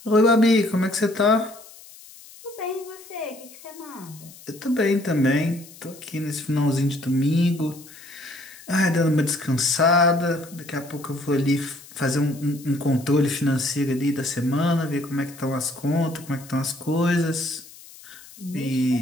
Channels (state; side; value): noise; left; hiss, 20 dB below the sound